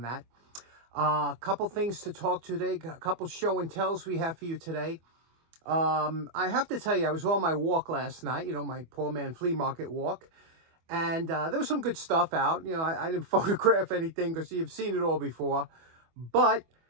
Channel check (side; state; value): left; late; 25 ms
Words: that. A couple things to talk to today. A couple show and tells we have for you today. I have to tell you, I was on my walk last night. You know, my poor man flea market walk. And there was some good stuff out. You know, I didn't photograph anything because you've seen it all before. But